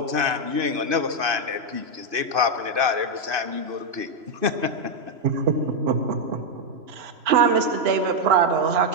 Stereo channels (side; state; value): left; late; 3.0 ms